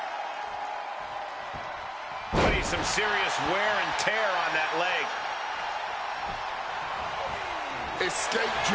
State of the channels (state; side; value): identical; both; correlation 1.00